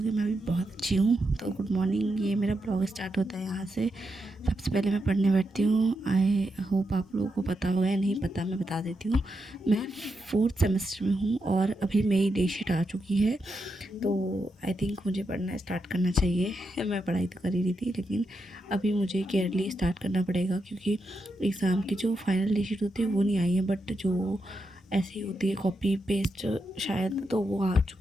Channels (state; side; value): normal; both; correlation 0.84